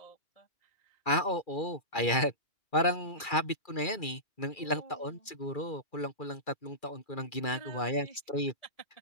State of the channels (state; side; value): late; right; 2.3 ms